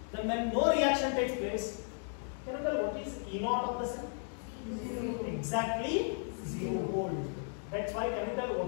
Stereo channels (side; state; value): right; silent; 55 dB below the other